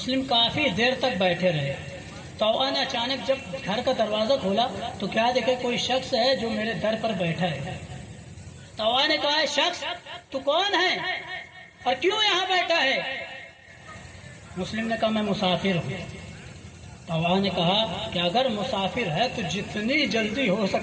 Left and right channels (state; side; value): identical; both; correlation 1.00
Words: کافی دیر تک بیٹھے رہے۔ طوعہ نے اچانک جب گھر کا دروازہ کھولا تو کیا دیکھے، کوئی شخص ہے جو میرے در پر بیٹھا ہے۔ طوعہ نے کہا، شخص تو کون ہے اور کیوں یہاں بیٹھا ہے؟ مسلم نے کہا، میں مسافر ہوں۔ طوعہ نے کہا کہ اگر مسافر ہے تو جتنی جلدی ہو